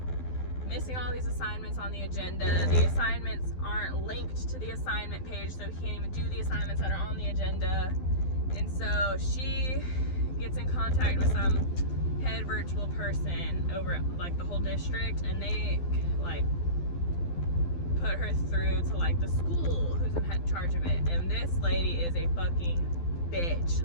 missing all these assignments on the agenda. The assignments aren't linked to the assignment page, so he can't even do the assignments that are on the agenda. And so she gets in contact with some head virtual person over, like, the whole district, and they, like, put her through to like the school who's in charge of it, and this lady is a fucking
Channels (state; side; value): late; right; 12 ms